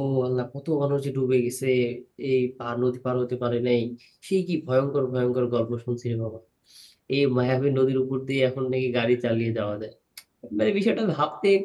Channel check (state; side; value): identical; both; correlation 1.00